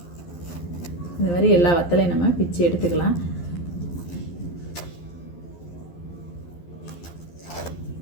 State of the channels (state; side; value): late; right; 12 ms